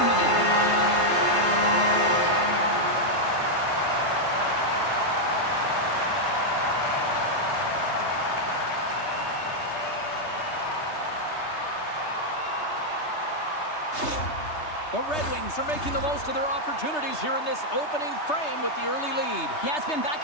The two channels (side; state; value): right; late; 3.3 ms